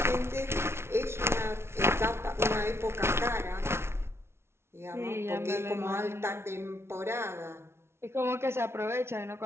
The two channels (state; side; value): late; left; 0.12 ms